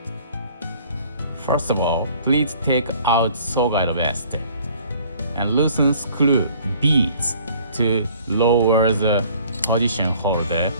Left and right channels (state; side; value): inverted; both; correlation -0.55